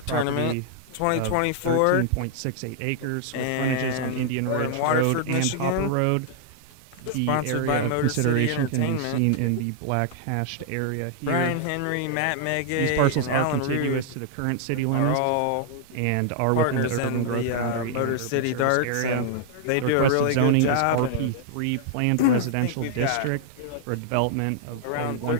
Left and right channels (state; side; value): different; both; correlation -0.01